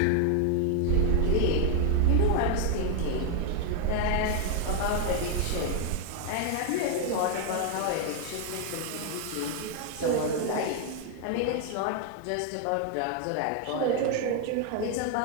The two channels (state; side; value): different; both; correlation 0.00